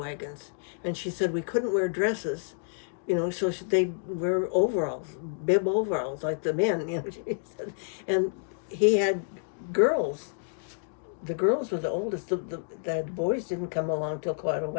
And she said we couldn't wear dresses, you know, so they'd wear overalls, bib overalls, like the men, you know, she said. And he had girls. The girls were the oldest. The boys didn't come along till quite a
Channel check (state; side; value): silent; right; digital silence